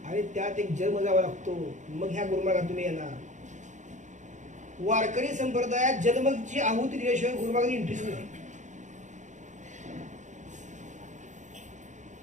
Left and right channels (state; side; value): late; left; 0.35 ms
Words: आणि त्यात एक जन्म जावा लागतो, मग ह्या गुरुमार्गात तुम्ही येणार. वारकरी संप्रदायात जन्मची आहुती दिल्याशिवाय गुरुमार्गात इंटरेस्ट नाही.